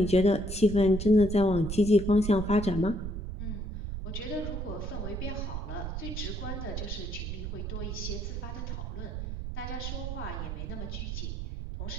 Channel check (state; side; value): noise; right; rumble, 5 dB below the sound